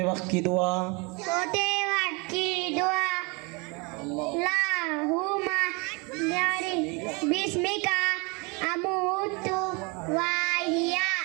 वक्त की दुआ। सोते वक्त की दुआ। अल्लाहुम्मा बिस्मिका अमूतु वाहिया।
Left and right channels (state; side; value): quieter; left; 29.3 dB